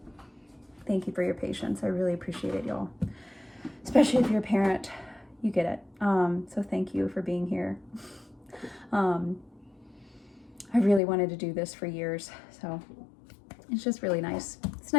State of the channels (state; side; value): drops out; right; at 11.0 s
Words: Thank you for your patience. I really appreciate it, y'all. Especially if you're a parent, you get it. So thank you for being here. I really wanted to do this for years, so it's just really nice. It's